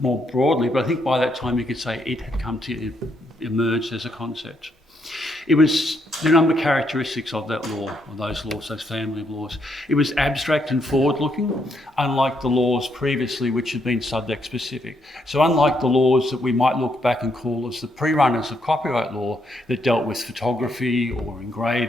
more broadly, but I think by that time you could say it had come to emerge as a concept. It was the number of characteristics of that law, or those laws, those family of laws. It was abstract and forward-looking, unlike the laws previously which had been subject-specific. So unlike the laws that we might look back and call as the pre-runners of copyright law that dealt with photography or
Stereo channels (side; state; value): both; normal; correlation 0.76